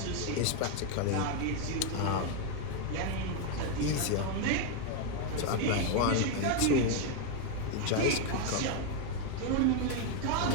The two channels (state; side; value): different; both; correlation 0.01